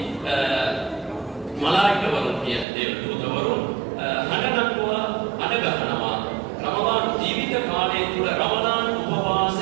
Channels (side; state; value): left; drops out; at 2.7 s